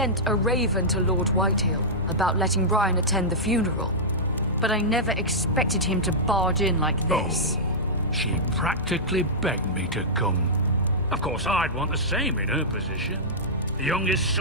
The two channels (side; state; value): both; normal; correlation -0.13